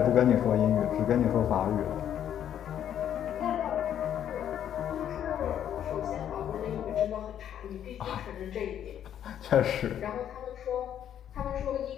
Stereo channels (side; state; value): right; quieter; 10.0 dB